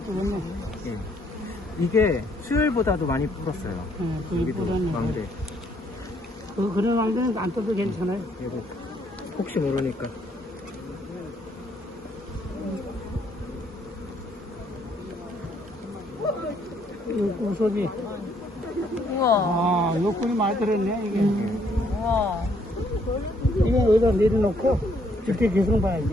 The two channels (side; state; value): both; normal; correlation 0.68